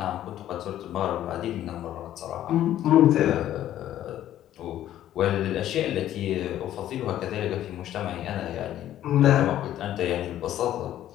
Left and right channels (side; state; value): right; quieter; 12.3 dB